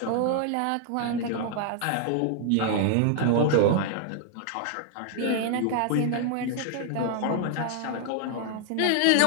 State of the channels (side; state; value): both; different; correlation 0.00